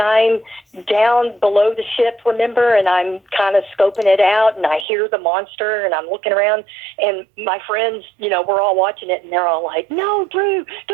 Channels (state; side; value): drops out; left; at 4.9 s